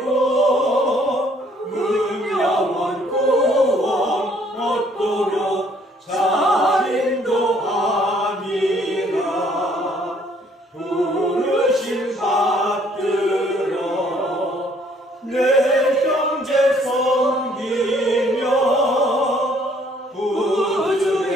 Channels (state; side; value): normal; both; correlation 0.63